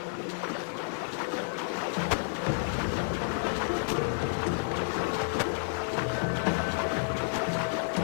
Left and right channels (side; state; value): right; silent; digital silence